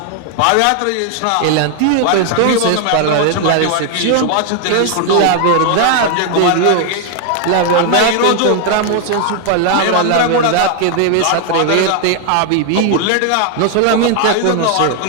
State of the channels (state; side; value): different; both; correlation 0.00